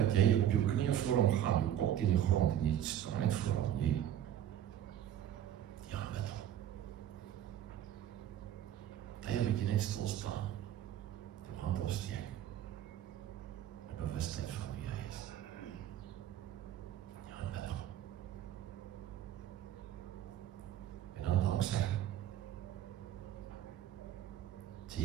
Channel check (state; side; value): quieter; left; 11.0 dB